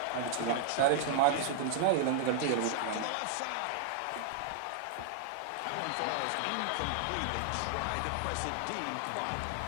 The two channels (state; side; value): different; both; correlation 0.00